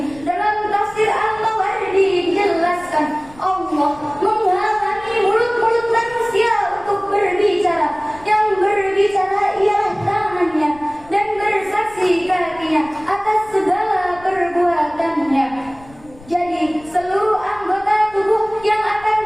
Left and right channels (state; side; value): noise; left; rumble, 23 dB below the sound